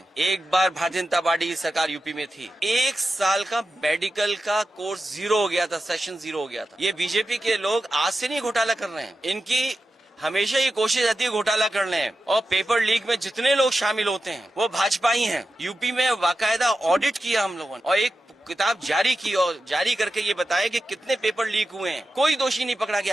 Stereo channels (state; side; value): normal; both; correlation 0.91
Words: एक बार भारतीय जनता पार्टी की सरकार यूपी में थी, 1 साल का मेडिकल का कोर्स 0 हो गया था, सेशन 0 हो गया था। ये बीजेपी के लोग आज से नहीं घोटाला कर रहे हैं, इनकी हमेशा ये कोशिश रहती है घोटाला करने। और पेपर लीक में जितने लोग शामिल होते हैं वो भाजपा ही हैं। यूपी में बाकायदा ऑडिट किया हम लोगों ने और एक किताब जारी की और जारी करके ये बताया कि कितने पेपर लीक हुए हैं। कोई दोषी नहीं पकड़ा